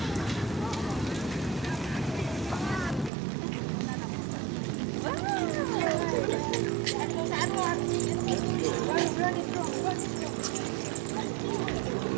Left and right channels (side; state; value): left; drops out; at 3.1 s